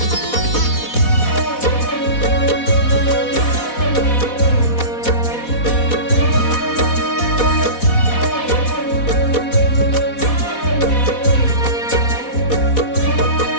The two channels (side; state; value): right; late; 4.1 ms